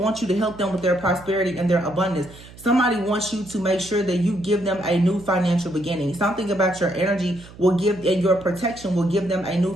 you to help them with their prosperity and their abundance. Somebody wants you to make sure that you give them a new financial beginning. Something about your energy will give, and your protection will give them a new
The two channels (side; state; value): right; noise; hum, 20 dB below the sound